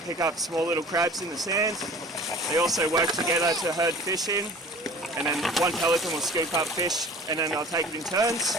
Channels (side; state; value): both; normal; correlation 0.44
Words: pick up small little crabs in the sand. They also work together to herd fish in, and then one pelican will scoop up fish and then they'll take it in turns.